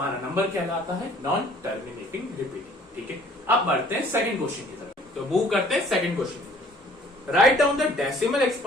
नंबर कहलाता है नॉन टर्मिनेटिंग रिपीटिंग। ठीक है, अब बढ़ते हैं सेकंड क्वेश्चन की तरफ। तो मूव करते हैं सेकंड क्वेश्चन की तरफ। Write down the decimal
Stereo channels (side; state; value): both; normal; correlation 0.56